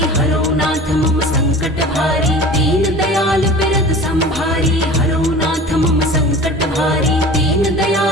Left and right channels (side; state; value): both; normal; correlation 0.39